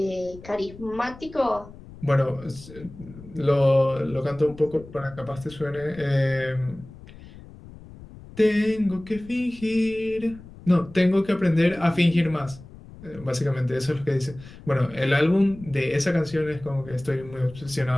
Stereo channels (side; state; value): left; noise; rumble, 18 dB below the sound